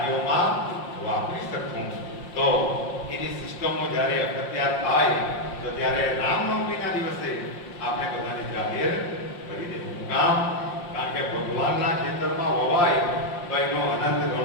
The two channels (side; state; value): right; late; 5.7 ms